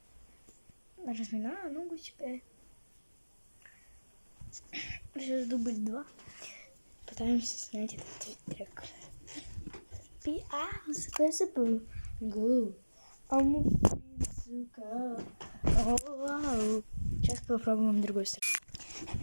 Разминаю ногу себе. Сейчас дубль 2. Пытаемся снять этот трек. Go. Сейчас попробуем другой сторону.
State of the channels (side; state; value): both; inverted; correlation -1.00